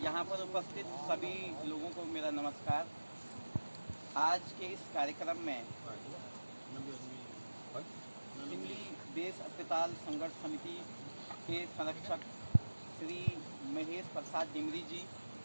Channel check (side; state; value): both; inverted; correlation -1.00